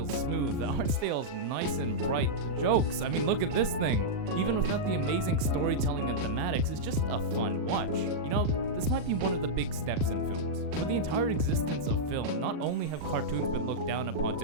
smooth, the art style is nice and bright, the jokes, I mean look at this thing. Even without the amazing storytelling and thematics, it's just a fun watch. You know, this might be one of the big steps in films. For the entire existence of film, not only have cartoons been looked down upon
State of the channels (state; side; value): late; left; 40 ms